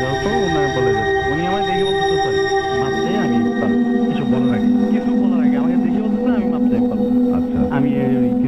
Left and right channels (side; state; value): both; identical; correlation 1.00